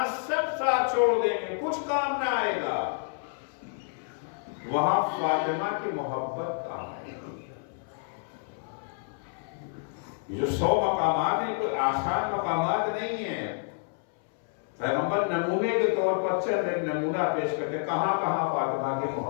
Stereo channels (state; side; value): silent; right; 59 dB below the other